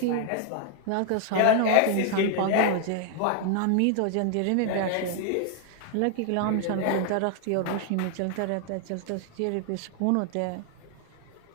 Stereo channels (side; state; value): both; different; correlation 0.00